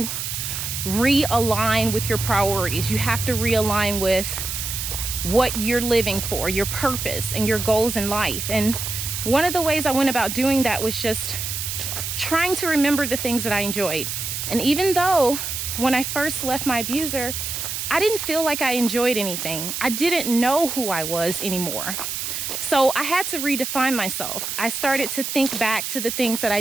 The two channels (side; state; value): right; noise; hiss, 4 dB below the sound